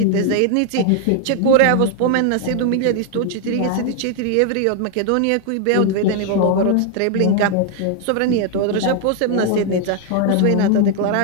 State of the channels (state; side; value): different; both; correlation 0.00